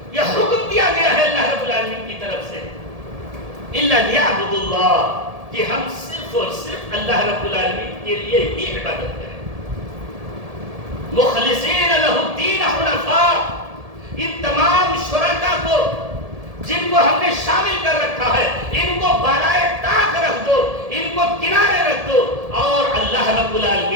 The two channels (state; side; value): late; left; 1.7 ms